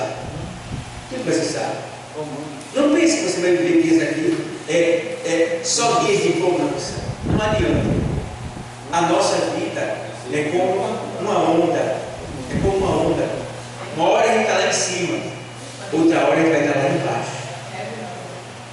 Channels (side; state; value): both; identical; correlation 1.00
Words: Tudo vai cessar. Não pense que você vai viver dias aqui, só dias de empolgância. Não adianta. A nossa vida é como uma onda. É como uma onda. Uma hora a gente está lá em cima, outra hora a gente vai estar lá embaixo.